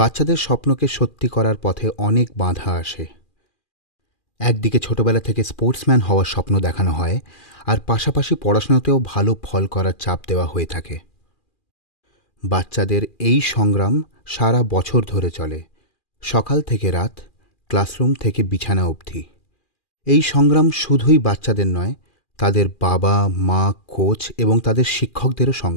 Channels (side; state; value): right; late; 2.4 ms